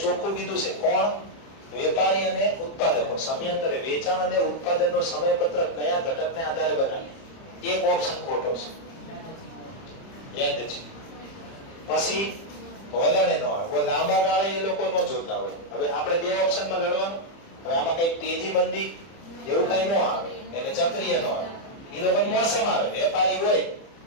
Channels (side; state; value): right; late; 30 ms